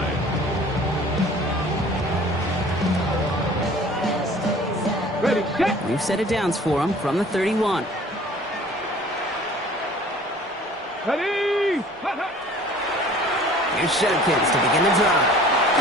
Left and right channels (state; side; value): normal; both; correlation 0.49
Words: Ready, set. We've set it downs for him from the 31. Ready. Here's Shudkins to begin the drive.